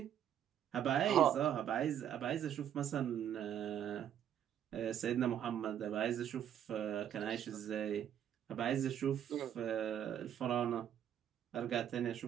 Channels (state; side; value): quieter; left; 9.9 dB